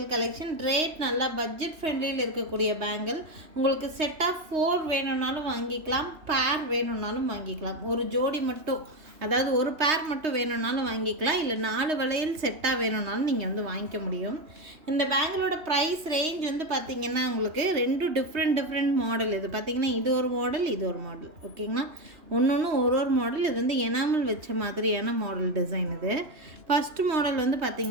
கலெக்ஷன். ரேட் நல்லா பட்ஜெட் ஃப்ரெண்ட்லியில் இருக்கக்கூடிய பேங்கிள். உங்களுக்கு செட் ஆஃப் 4 வேணும்னாலும் வாங்கிக்கலாம், பேர் வேணும்னாலும் வாங்கிக்கலாம். ஒரு ஜோடி மட்டும், அதாவது ஒரு பேர் மட்டும் வேணும்னாலும் வாங்கிக்கலாம், இல்லை 4 வளையல் செட்டாக வேணும்னாலும் நீங்கள் வந்து வாங்கிக்க முடியும். இந்த பேங்கிளோட ப்ரைஸ் ரேஞ்ச் வந்து பார்த்திங்கன்னா உங்களுக்கு 2 டிஃப்ரெண்ட் மாடல். இது பார்த்திங்கன்னா இது ஒரு மாடல், இது ஒரு மாடல். ஓகேங்களா, ஒன்று ஒரு மாடல். இது வந்து எனாமல் வச்ச மாதிரியான மாடல் டிசைன். இது ஃபஸ்ட்டு மாடல் வந்து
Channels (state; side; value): late; left; 3.2 ms